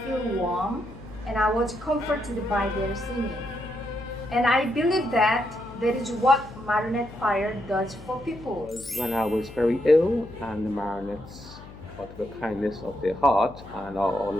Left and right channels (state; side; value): noise; left; hum, 17 dB below the sound